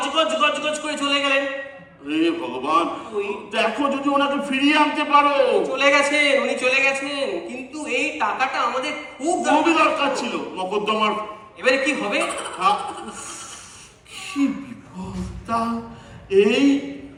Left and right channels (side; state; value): both; identical; correlation 1.00